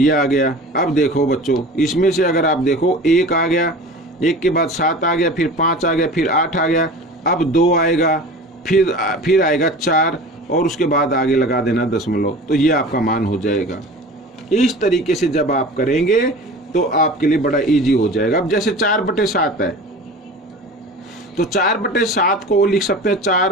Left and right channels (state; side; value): normal; both; correlation 0.37